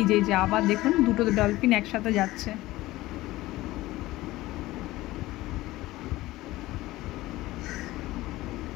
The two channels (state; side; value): quieter; right; 17.8 dB